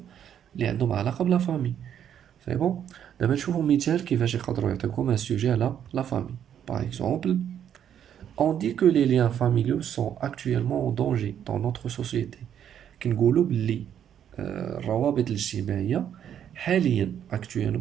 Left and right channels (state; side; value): quieter; left; 9.4 dB